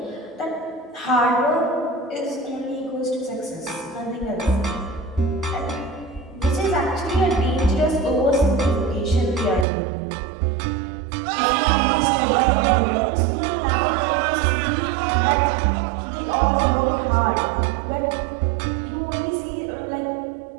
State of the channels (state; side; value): drops out; left; at 9.7 s